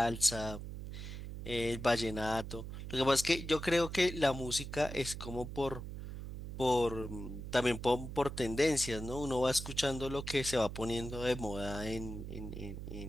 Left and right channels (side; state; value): right; noise; hum, 8 dB below the sound